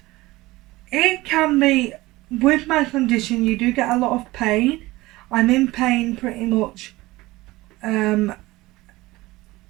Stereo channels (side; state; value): left; quieter; 19.5 dB